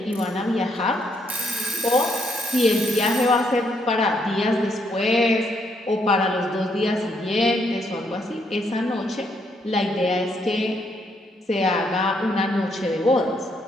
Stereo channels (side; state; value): both; normal; correlation 0.73